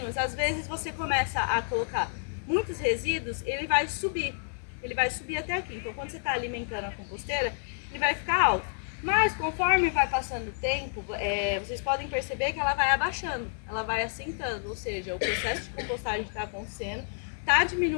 às vezes você começa a colocar muitos resíduos, ele vai subir até aqui. Então, quando você está alimentando a composteira, ele vai ficar alto. Mas conforme vai passando o tempo, vocês podem perceber que ela vai abaixando, ela vai assentando, ou seja, o processo de compostagem está acontecendo, está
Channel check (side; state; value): right; silent; digital silence